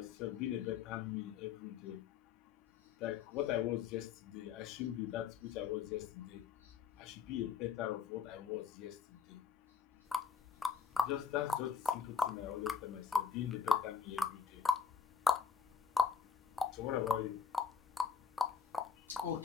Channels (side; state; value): right; quieter; 6.2 dB